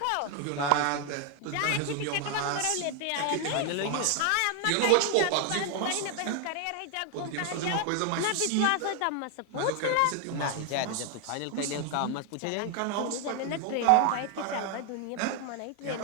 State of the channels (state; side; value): different; both; correlation 0.01